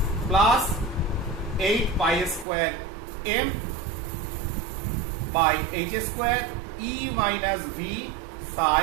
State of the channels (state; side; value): drops out; left; at 2.5 s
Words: plus 8 pi square m by h square e minus v